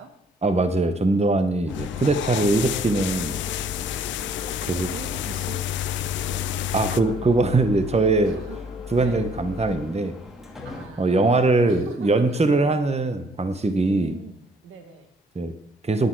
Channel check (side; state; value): both; normal; correlation 0.61